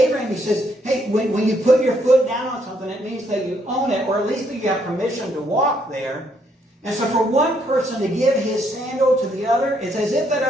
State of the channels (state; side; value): normal; both; correlation 0.72